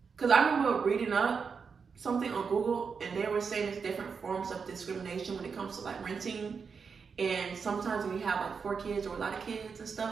cause I remember reading up something on Google and they were saying there's different forms of discrimination when it comes to like renting. And sometimes when you have like 4 kids or a lot of kids and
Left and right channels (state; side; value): quieter; left; 5.7 dB